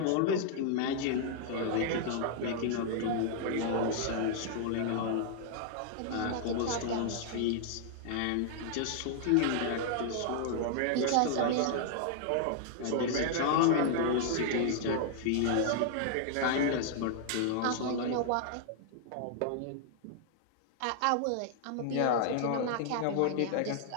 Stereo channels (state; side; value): different; both; correlation -0.01